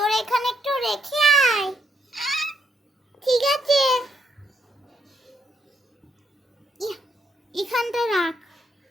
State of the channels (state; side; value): normal; both; correlation 0.75